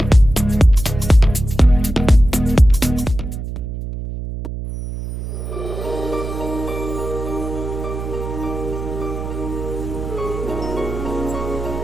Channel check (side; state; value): right; noise; hum, 7 dB below the sound